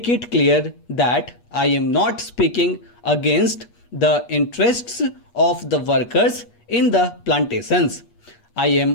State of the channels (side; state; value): right; late; 8.4 ms